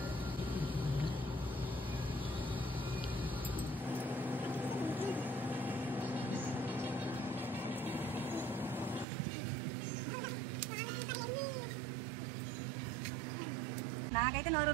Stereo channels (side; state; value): left; drops out; at 9.1 s